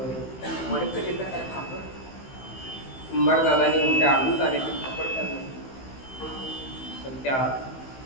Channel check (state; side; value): late; right; 15 ms